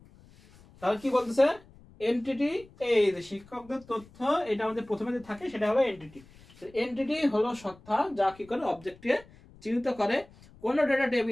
তাহলে কি বলতেছে? এন্টিটি, এই যে শিক্ষকদের তথ্য, এটা আমাদের প্রথমে যে থাকে সেটা হলো এন্টিটি। এন্টিটি হলো সত্তা যা কি করে? অবজেক্টকে চিহ্নিত করে। কোন ডেটা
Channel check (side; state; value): left; noise; rumble, 25 dB below the sound